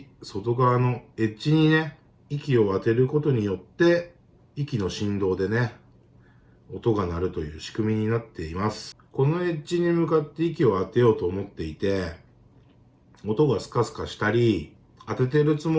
外側のエッジにね、息を当てることによって、息の振動でね、音が鳴るという仕組みになっています。このエッジに向かって息を当てようと思っていて、音がスカスカしたり、当ててるつ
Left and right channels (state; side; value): identical; both; correlation 1.00